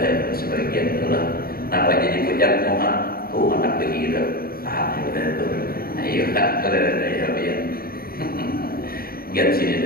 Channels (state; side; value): late; right; 0.44 ms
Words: sebagian itulah. Nampak jadi pucat muha, anak begitu. Udah tuh. Ayo kan ya biar. Biar sini